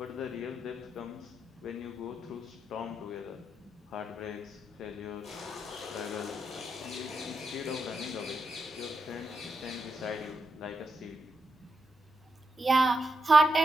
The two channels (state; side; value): normal; both; correlation 0.84